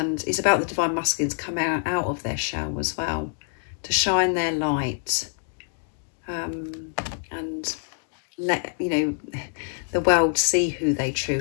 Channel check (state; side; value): silent; right; 61 dB below the other